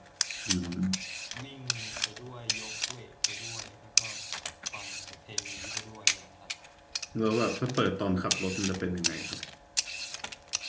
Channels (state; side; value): identical; both; correlation 1.00